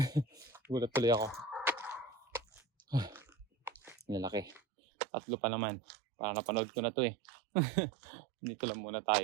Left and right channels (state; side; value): drops out; left; at 4.6 s